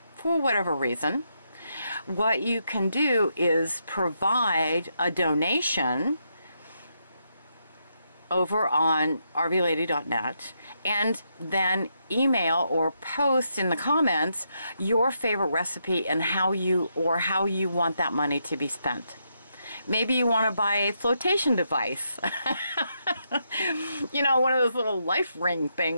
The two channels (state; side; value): inverted; both; correlation -0.80